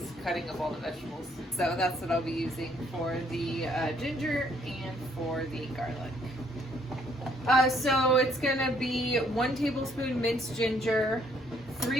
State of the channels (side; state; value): both; normal; correlation 0.67